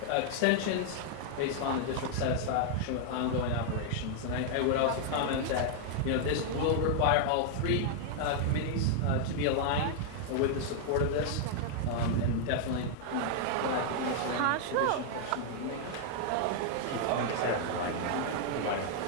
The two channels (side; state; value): both; different; correlation 0.00